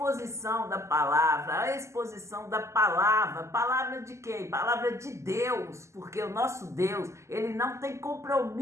da palavra, palavra de quem? Palavra de Deus, porque o nosso Deus, ele não tem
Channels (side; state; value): left; late; 0.13 ms